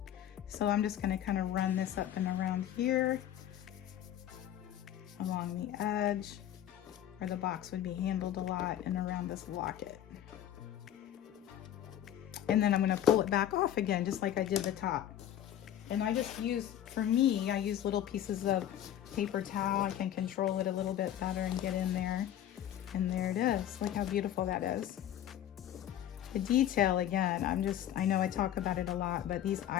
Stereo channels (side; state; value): right; quieter; 11.2 dB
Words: So I'm just going to kind of run this up and around here, along the edge. where the box would be handled a lot and around this locket. And then I'm gonna pull it back off again, just like I did the top. And I just use, for me, I use little pieces of paper towel. I can control it a little bit better and get in there. And there it is. Look how beautiful that is. The detail, again, I know I talk about it a lot, but these